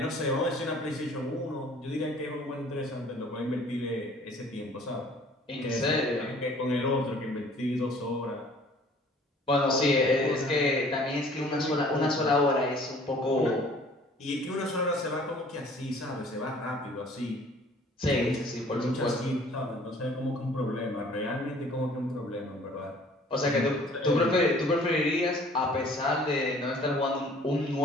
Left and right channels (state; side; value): normal; both; correlation 0.53